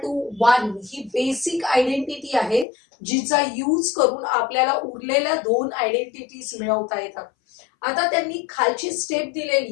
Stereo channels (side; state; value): right; drops out; at 2.7 s